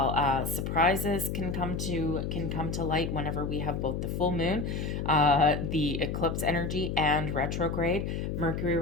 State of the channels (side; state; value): left; noise; hum, 3 dB below the sound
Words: Surprises can come to light whenever we have both the full moon, the eclipse energy, and retrograde, Mercury